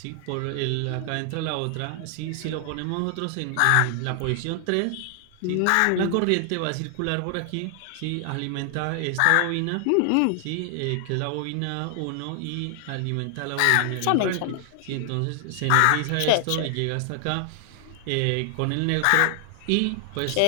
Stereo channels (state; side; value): different; both; correlation 0.00